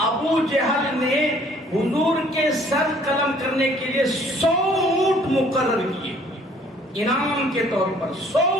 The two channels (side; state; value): both; normal; correlation 0.58